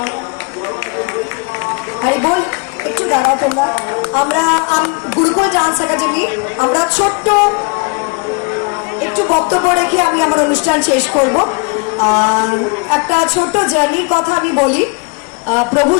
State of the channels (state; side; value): quieter; right; 31.9 dB